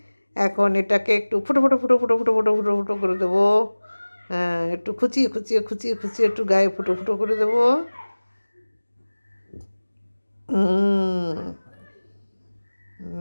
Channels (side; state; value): both; inverted; correlation -1.00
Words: এখন এটাকে একটু ফুটো ফুটো ফুটো ফুটো ফুটো ফুটো ফুটো ফুটো করে দেবো। হ্যাঁ, একটু খুচিয়ে খুচিয়ে খুচিয়ে খুচিয়ে একটু গায়ে ফুটো ফুটো করে দেবো।